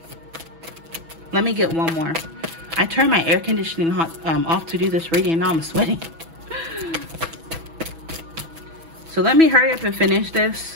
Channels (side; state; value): left; late; 6.1 ms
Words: Let me get one more. I turned my air conditioning off to do this reading, and now I'm sweating. So let me hurry up and finish